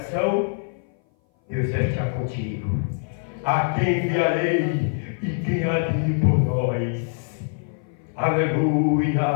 Deus vai estar contigo. A quem enviarei e quem há de ir por nós?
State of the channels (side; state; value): right; silent; 58 dB below the other